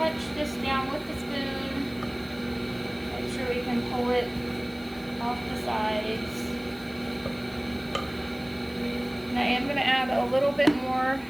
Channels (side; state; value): left; noise; hiss, 25 dB below the sound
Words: this down with the spoon. We can pull it off the sides. And I am going to add a little bit more